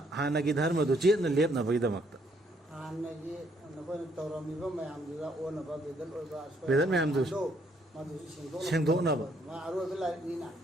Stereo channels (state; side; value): normal; both; correlation 0.69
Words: हानगी धर्म दु चेतना लेपनबगीदमक्ता हानगी नखोइना तौरमिबा मयामदुदा ओनबा बेदल मयामदु सेंगदोकनबा मा अरोइबा लाइनिना